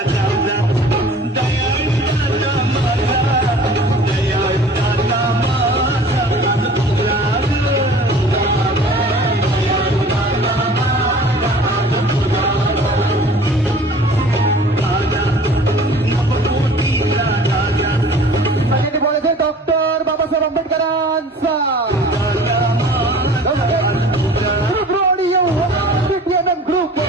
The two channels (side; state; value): both; normal; correlation 0.46